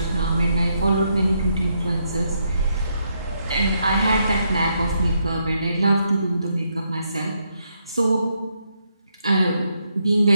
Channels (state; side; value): inverted; both; correlation -0.78